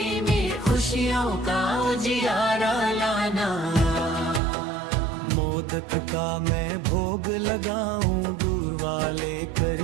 में खुशियों का उजियारा लाना। मोदक का मैं भोग लगाऊं, दूर वाले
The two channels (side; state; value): left; drops out; at 4.4 s